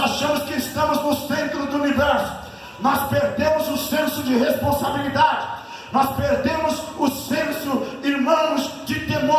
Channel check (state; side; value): identical; both; correlation 1.00